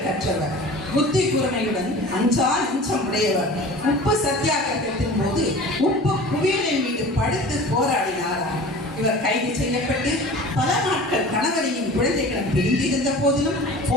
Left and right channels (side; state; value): both; normal; correlation 0.40